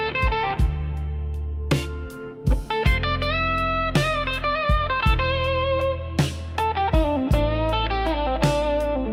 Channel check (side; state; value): both; identical; correlation 1.00